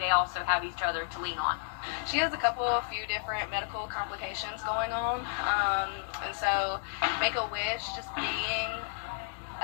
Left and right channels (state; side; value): silent; right; 56 dB below the other